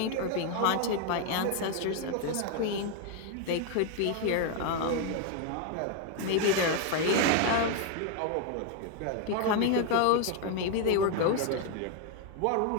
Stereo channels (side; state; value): both; different; correlation 0.01